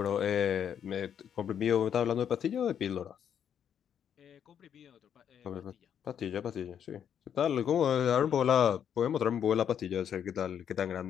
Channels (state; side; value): quieter; right; 8.7 dB